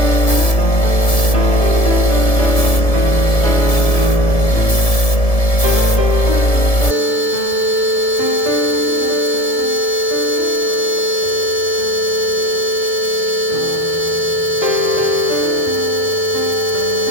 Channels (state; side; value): late; right; 1.7 ms